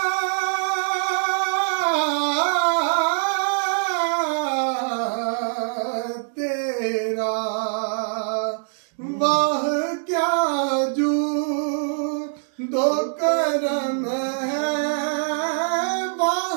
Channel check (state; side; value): silent; left; digital silence